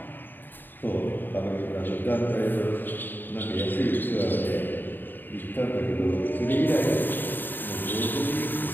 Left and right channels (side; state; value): right; late; 0.092 ms